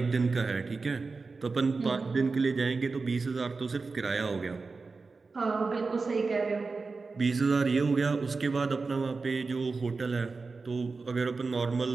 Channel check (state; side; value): quieter; left; 4.2 dB